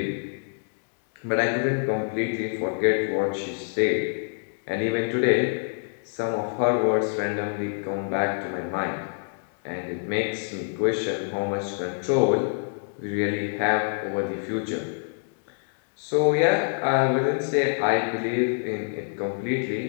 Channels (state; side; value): silent; right; digital silence